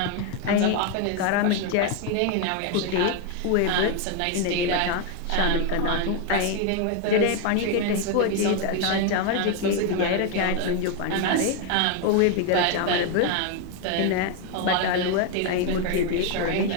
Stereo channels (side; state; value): both; different; correlation 0.01